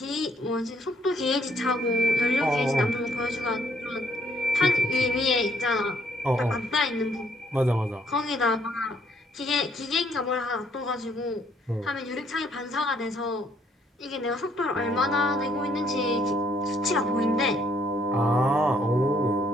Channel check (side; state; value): both; normal; correlation 0.67